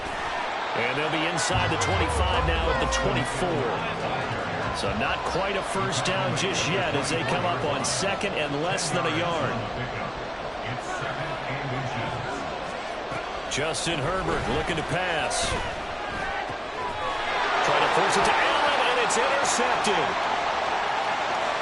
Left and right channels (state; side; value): identical; both; correlation 1.00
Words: And they'll be inside the 25 now at the 24. So not quite a 1st down just yet as they come up on 2nd and less than a yard. Justin Herbert looking to pass. Trying to force it to Allen, and it's intercepted.